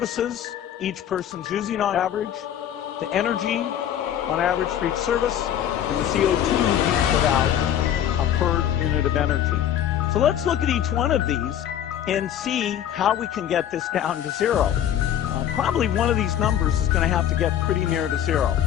each person's using on average, the energy on average for each service, and the CO2 being put out per unit of energy. So let's look at each one of these and see how we can get this down to 0. Probably one of these numbers is going to have to get pretty near to 0.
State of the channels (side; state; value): right; quieter; 10.4 dB